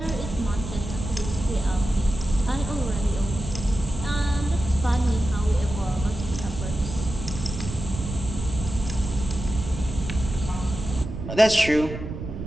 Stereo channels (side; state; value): right; noise; rumble, 7 dB below the sound